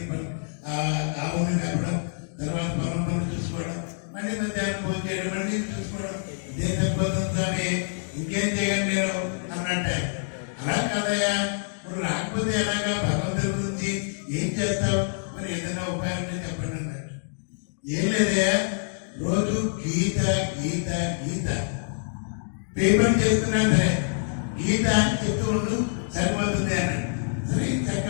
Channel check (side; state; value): right; silent; digital silence